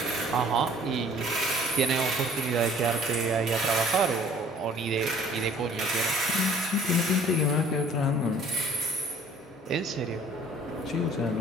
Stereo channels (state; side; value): normal; both; correlation 0.53